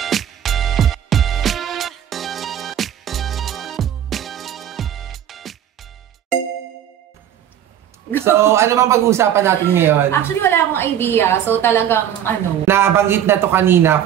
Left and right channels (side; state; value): left; quieter; 10.2 dB